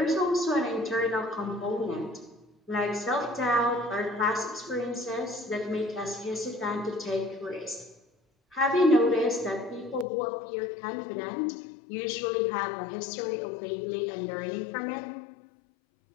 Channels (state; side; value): drops out; right; at 10.1 s